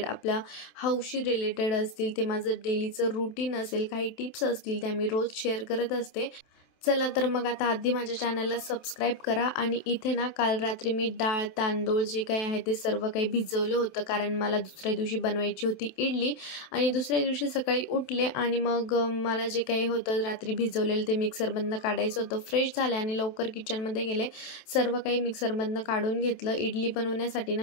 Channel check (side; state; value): right; late; 27 ms